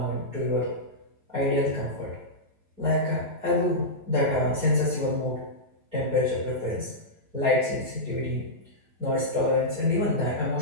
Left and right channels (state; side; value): late; left; 9.0 ms